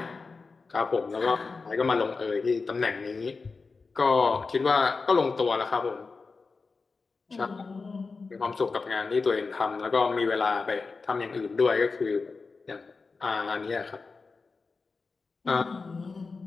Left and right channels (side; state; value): right; quieter; 4.3 dB